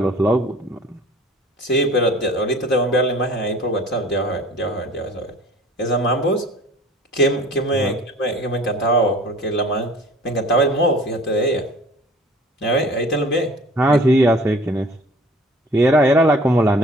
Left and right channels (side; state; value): both; normal; correlation 0.48